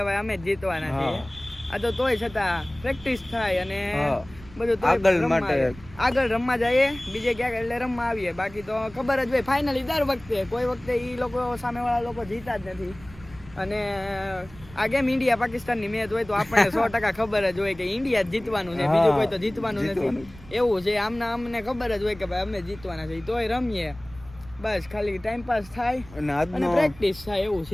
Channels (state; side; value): noise; right; rumble, 20 dB below the sound